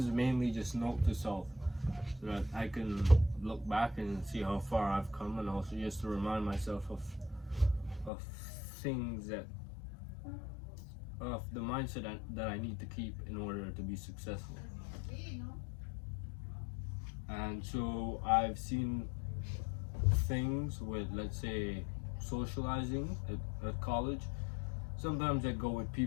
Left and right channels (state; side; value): drops out; right; at 8.1 s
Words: mainly just note to self, so that I can look back and see how far I've come, and also just to remind myself of things of the mindset that I need to keep in order to be successful. And so I've seen things with, let's say, socializing at college. Sometimes I go with